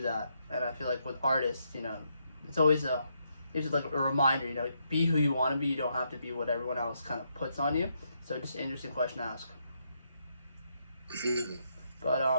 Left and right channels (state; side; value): inverted; both; correlation -0.78